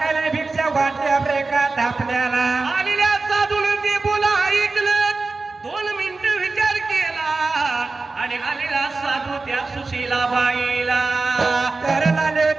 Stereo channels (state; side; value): quieter; left; 3.8 dB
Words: भिक्षा वाटल्या कथा आपल्याला. आलेल्या साधून ते बोला ऐकलं. 2 मिनिटं विचार केला आणि आलेला साधू त्या सुशीलाबाईला. तर आले